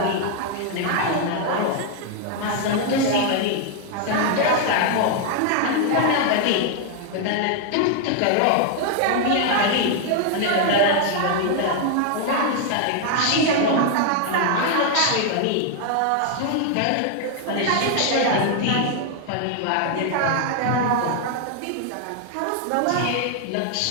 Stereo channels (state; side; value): different; both; correlation 0.00